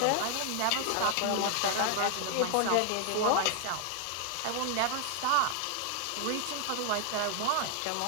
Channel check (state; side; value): different; both; correlation 0.00